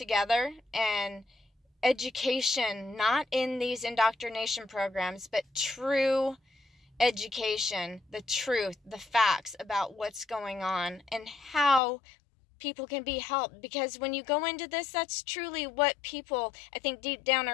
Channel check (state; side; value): drops out; right; at 11.8 s